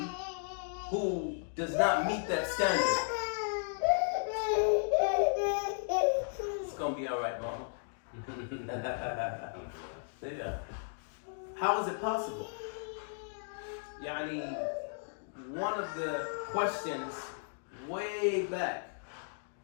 who does not meet that standard? It's gonna be all right, Mama. Yeah. How is it possible? One of the questions way back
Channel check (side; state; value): right; silent; digital silence